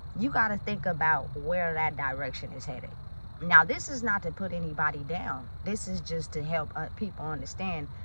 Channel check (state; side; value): inverted; both; correlation -1.00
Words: you got to think about where that direction is headed. Now, this is not to put anybody down. This is just to help people understand.